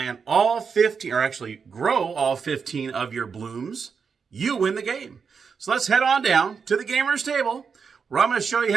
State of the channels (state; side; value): quieter; left; 5.9 dB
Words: all 15, or actually grow all 15 of your blooms, you win the game. So let's head on down to the gamer's table, where I'm going to show you